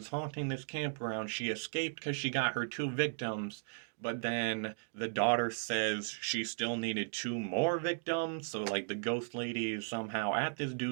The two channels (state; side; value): silent; left; digital silence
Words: haunting this campground, she escaped because she got her two victims. But then the daughter says she still needed two more victims. So, like, the ghost lady is somehow at this